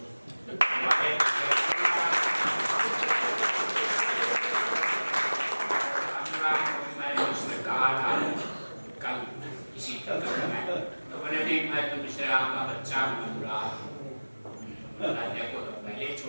मैंने उसने कहा था कल इसी तरह में, तो मैंने भी मैं तो मिश्रा का बच्चा बुरा देखो तो पहले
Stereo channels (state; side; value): inverted; both; correlation -1.00